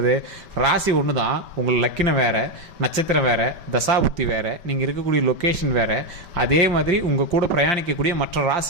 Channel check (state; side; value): late; left; 5.2 ms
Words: ராசி ஒன்று தான், உங்களுக்கு லக்கினம் வேறு, நட்சத்திரம் வேறு, தசாபுத்தி வேறு, நீங்கள் இருக்கக்கூடிய லொக்கேஷன் வேறு, அதே மாதிரி உங்கள் கூட பிரயாணிக்கக்கூடிய மற்ற